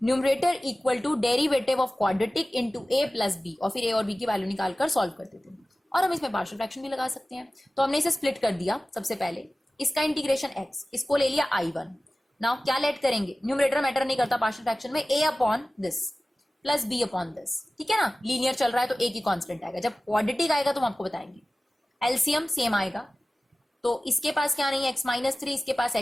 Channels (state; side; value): normal; both; correlation 0.97